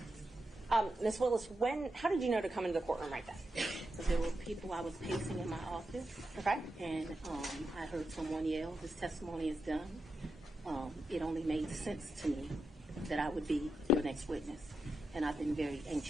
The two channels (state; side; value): normal; both; correlation 0.87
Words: Ms. Willis, how did you know to come into the courtroom right then? Because there were people I was pacing in my office. Okay. And I heard someone yell, "His testimony is done." It only made sense to me that I would be your next witness. And I've been very